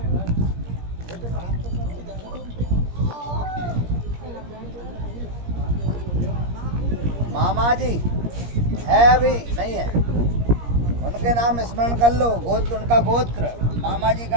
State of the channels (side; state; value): left; late; 17 ms